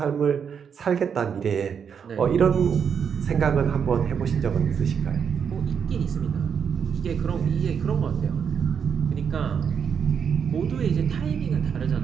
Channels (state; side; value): quieter; left; 7.2 dB